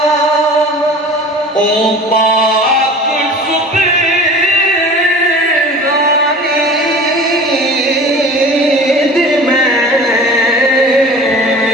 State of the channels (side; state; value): both; normal; correlation 0.40